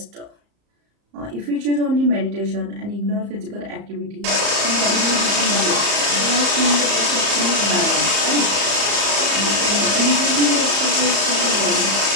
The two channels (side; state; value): left; late; 34 ms